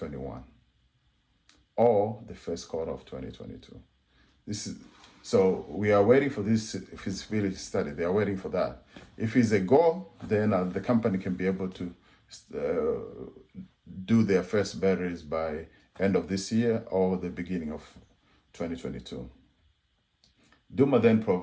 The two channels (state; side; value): identical; both; correlation 1.00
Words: or the first quarter of 2022. So we are waiting for this feasibility study. They are waiting for that. If it's a go, then the company can be able to do their first batteries by end of this year or the beginning of 2022. Duma then